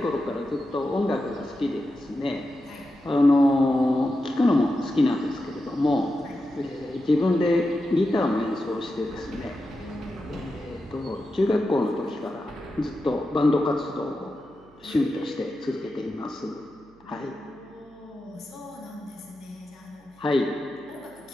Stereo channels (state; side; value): noise; right; hum, 29 dB below the sound